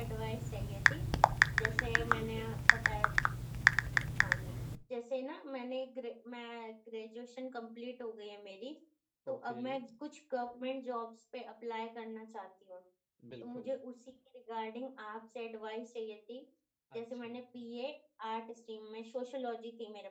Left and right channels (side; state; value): both; identical; correlation 1.00